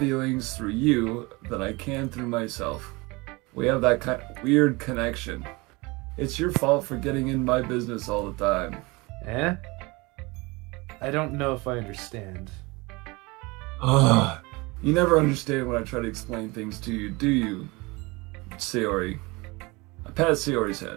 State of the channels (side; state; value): left; quieter; 24.7 dB